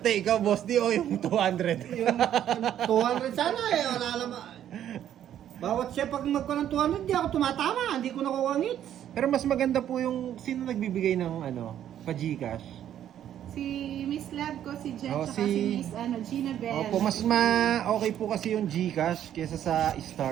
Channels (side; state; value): left; quieter; 10.7 dB